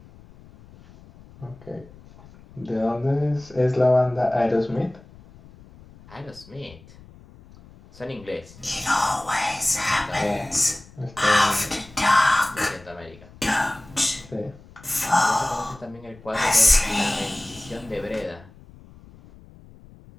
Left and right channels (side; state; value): left; noise; rumble, 22 dB below the sound